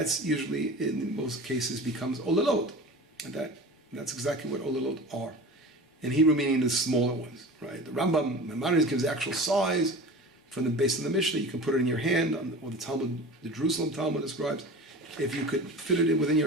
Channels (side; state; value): both; normal; correlation 0.36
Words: usually, in most cases, becomes olalot. And that's exactly what olalot are. In Hebrew, meaning the smaller ones, right? The Rambam, Maimonides gives the actual size based on the Mishnah. You can put it in your hand, or the Talmud, the Jerusalem Talmud describes. If you could fit it in within your